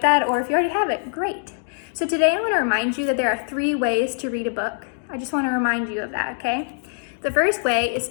that, or if you already have it, great. So today I want to remind you that there are 3 ways to read a book. I just want to remind you of that, okay? The first way is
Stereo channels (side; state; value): right; silent; 62 dB below the other